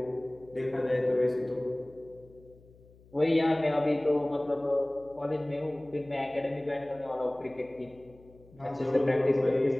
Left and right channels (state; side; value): noise; left; hum, 26 dB below the sound